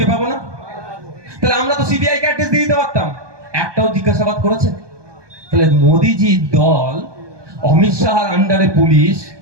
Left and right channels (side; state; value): left; late; 1.2 ms